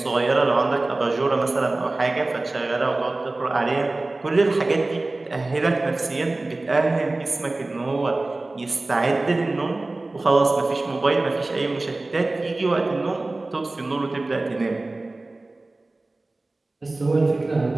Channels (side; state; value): left; quieter; 3.0 dB